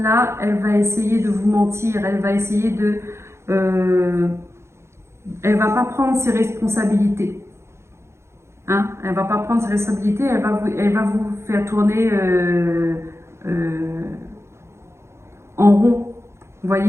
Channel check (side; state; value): left; late; 0.13 ms